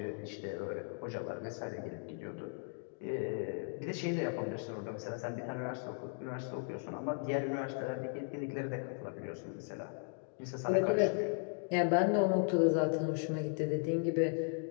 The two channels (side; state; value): right; silent; 53 dB below the other